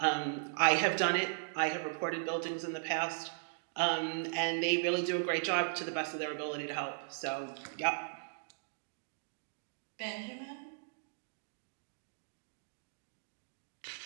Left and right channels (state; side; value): silent; left; digital silence